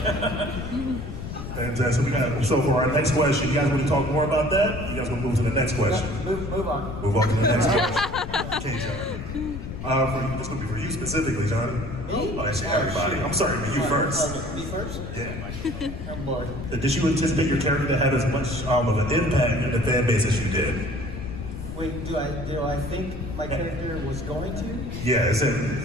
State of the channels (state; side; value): noise; left; rumble, 8 dB below the sound